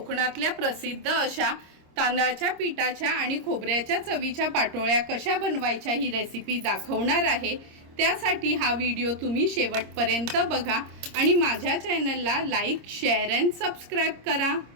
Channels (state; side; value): late; left; 26 ms